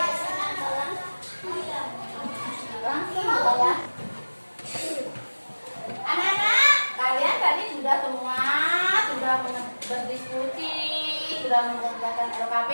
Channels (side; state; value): both; inverted; correlation -1.00